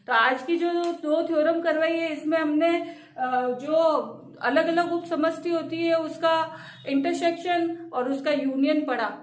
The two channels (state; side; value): identical; both; correlation 1.00